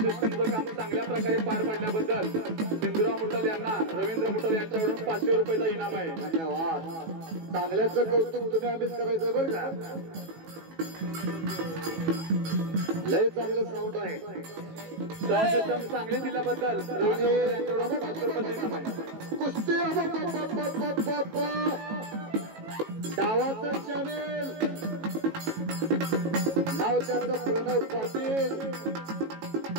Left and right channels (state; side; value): late; left; 18 ms